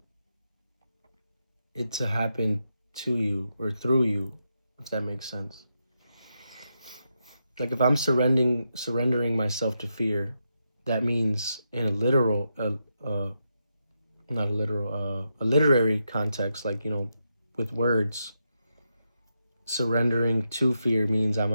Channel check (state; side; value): inverted; both; correlation -0.85